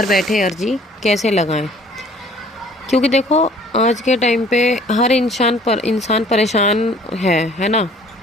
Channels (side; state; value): both; normal; correlation 0.54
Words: बैठे अर्जी कैसे लगाएं, क्योंकि देखो आज के टाइम पे हर इंसान परेशान है ना।